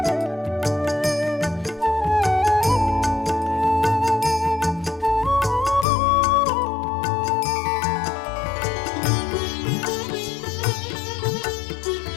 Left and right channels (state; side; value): drops out; right; at 5.9 s